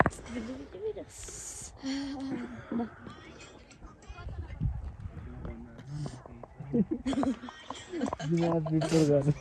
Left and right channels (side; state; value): both; identical; correlation 1.00